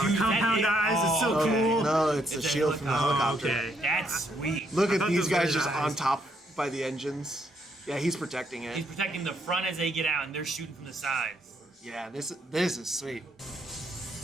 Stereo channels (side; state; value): both; normal; correlation 0.73